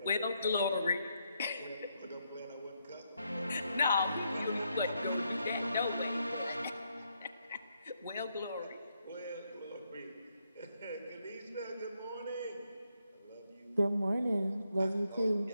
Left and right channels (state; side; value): inverted; both; correlation -0.79